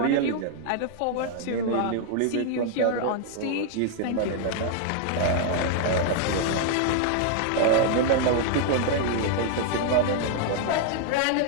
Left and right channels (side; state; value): both; different; correlation 0.00